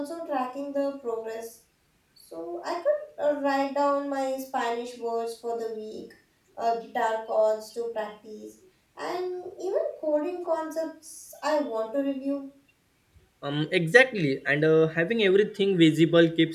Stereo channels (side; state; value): both; identical; correlation 1.00